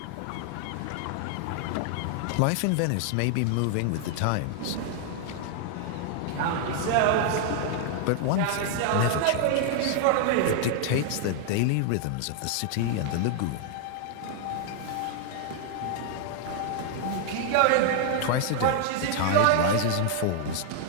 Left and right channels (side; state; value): both; different; correlation 0.00